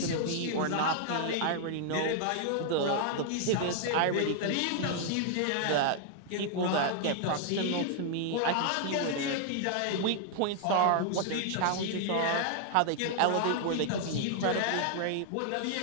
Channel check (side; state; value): both; different; correlation 0.00